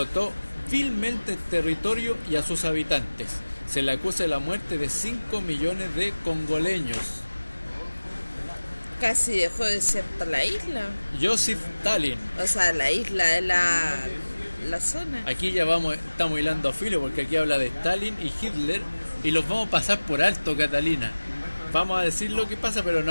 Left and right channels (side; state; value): both; inverted; correlation -1.00